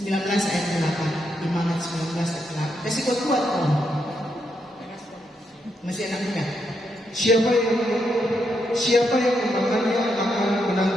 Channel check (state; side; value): normal; both; correlation 0.80